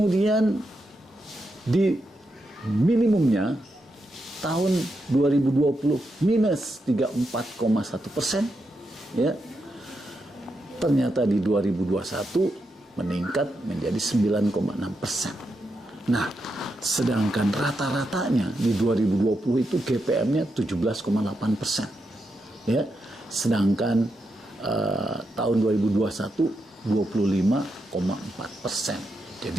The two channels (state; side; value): normal; both; correlation 0.84